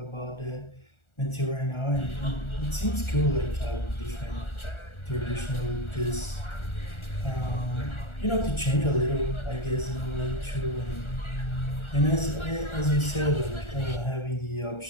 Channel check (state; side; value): late; right; 1.4 ms